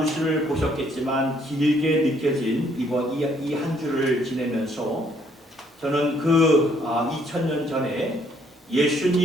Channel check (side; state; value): both; normal; correlation 0.66